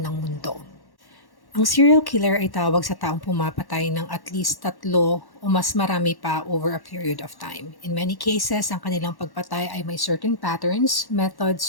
mundo. Ang serial killer ay tawag sa taong pumapatay ng at least 3 o mas marami pa over a period of time. In many cases, ang kanilang pagpatay ay may certain patterns, methods,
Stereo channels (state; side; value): late; right; 1.1 ms